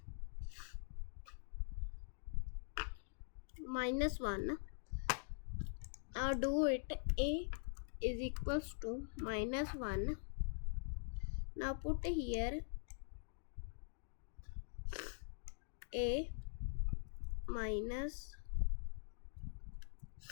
Minus 1. Now do it. A is equals to minus 1. Now put here A minus,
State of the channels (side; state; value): right; silent; digital silence